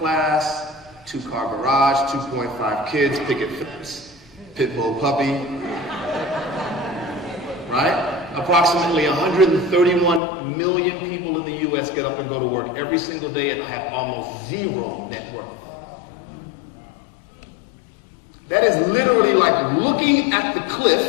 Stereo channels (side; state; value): right; drops out; at 10.2 s